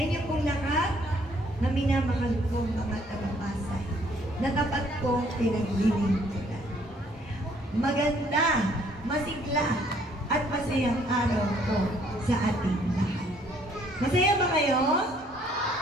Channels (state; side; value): normal; both; correlation 0.63